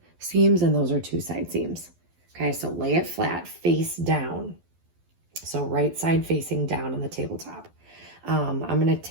seams and those are 2 side seams. Okay, so lay it flat, face down. So right side facing down on the tabletop. I'm going to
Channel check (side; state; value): left; late; 12 ms